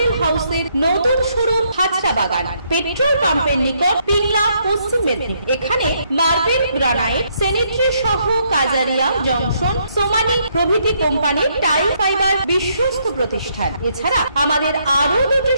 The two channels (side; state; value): both; inverted; correlation -0.73